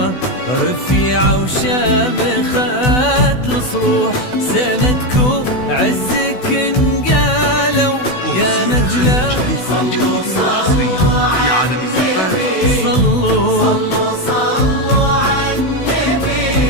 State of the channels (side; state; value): right; late; 16 ms